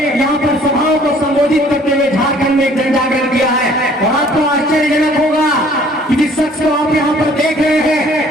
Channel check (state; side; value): normal; both; correlation 0.56